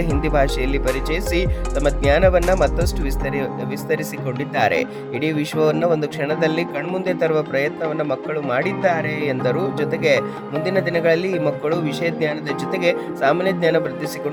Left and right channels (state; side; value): identical; both; correlation 1.00